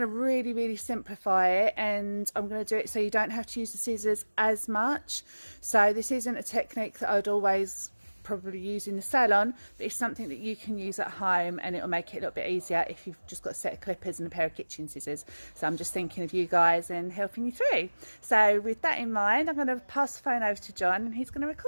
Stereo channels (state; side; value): inverted; both; correlation -1.00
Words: really simplify it, and I'm going to do it so you don't have to use the scissors as much. So this isn't a technique that I'd always probably use in the salon, but it's something that you can use at home, and it'll make it a little bit easier if you've just got a set of clippers and a pair of kitchen scissors. So I'm just thinking of you guys and helping you through. So with that in mind, I'm going to pass the phone over to John, and he's going to